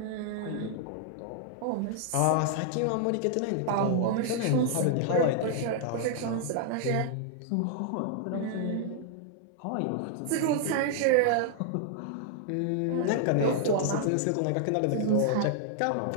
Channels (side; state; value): both; different; correlation -0.01